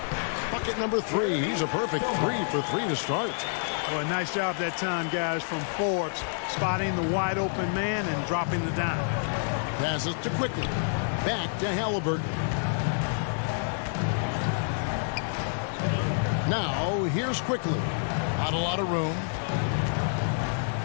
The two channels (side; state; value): right; silent; digital silence